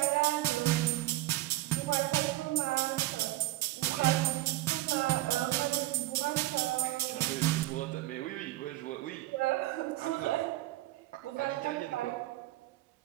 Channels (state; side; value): quieter; left; 17.5 dB